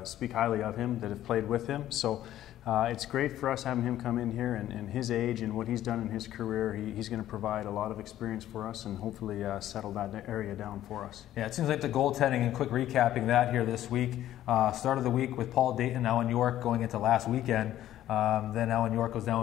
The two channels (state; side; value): quieter; right; 12.8 dB